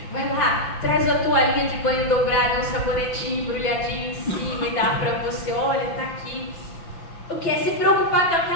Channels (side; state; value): right; late; 6.0 ms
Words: vai lá, traz a toalhinha de banho dobrada, um sabonetinho embrulhadinho em cima e dá pra você, olha, tá aqui. O que é se preocupar que